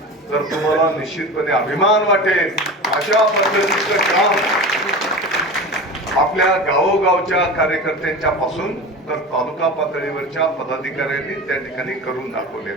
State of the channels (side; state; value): both; normal; correlation 0.31